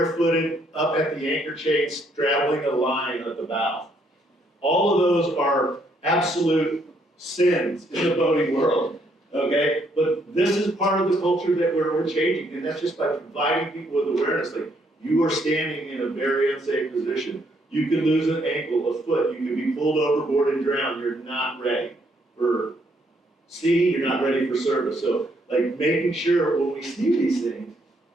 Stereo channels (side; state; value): both; normal; correlation 0.71